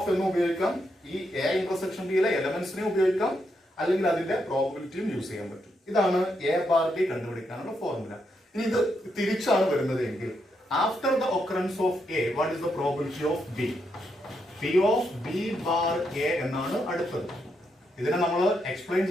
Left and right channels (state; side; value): normal; both; correlation 0.80